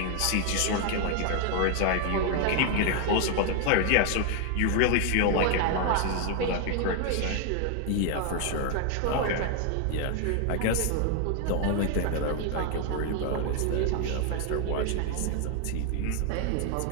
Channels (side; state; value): both; different; correlation 0.00